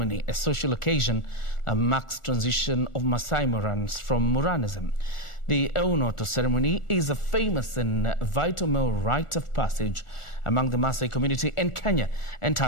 a social occasion that marks transition of Maasai Morans from Moranism. The Eunoto ceremony is a famous and vital male rite of passage among the Maasai community in Kenya and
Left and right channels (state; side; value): late; right; 1.4 ms